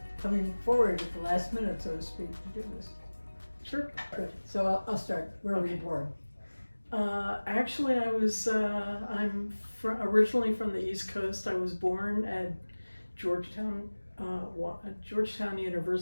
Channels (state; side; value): inverted; both; correlation -1.00